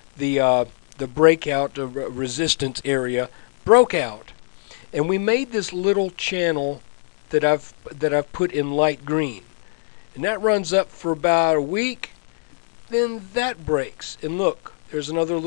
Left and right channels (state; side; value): silent; right; 64 dB below the other